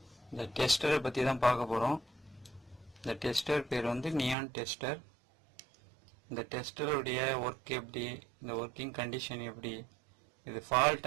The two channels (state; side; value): drops out; left; at 4.4 s